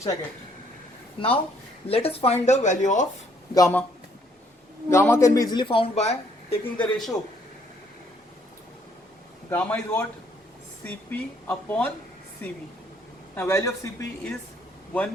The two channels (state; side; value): normal; both; correlation 0.66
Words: I get. Now let us find the value of gamma. Gamma can be easily found by taking the ratio. Gamma is what? Cp upon Cv. Now value of Cp is